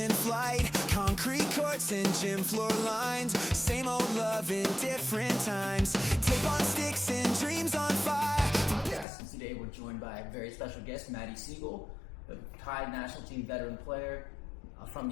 flight, concrete courts and gym floor lines, same old love in different times, tape on sticks and dreams on fire. Today we're joined by a very special guest, Matty Sigel, a Thai national team veteran player from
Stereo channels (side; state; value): right; drops out; at 9.1 s